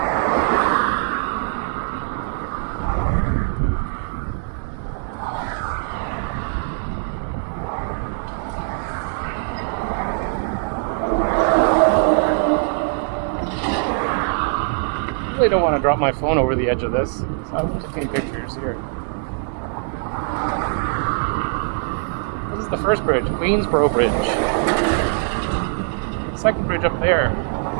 I really don't want to drop my phone over the edge of this, so I'm just taking pictures here. This is the first bridge, Queensboro Bridge. The second bridge up there, you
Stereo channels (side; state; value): left; silent; 58 dB below the other